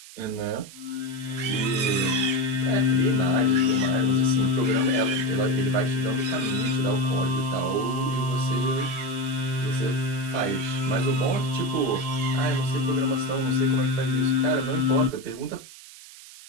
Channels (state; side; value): noise; right; hiss, 18 dB below the sound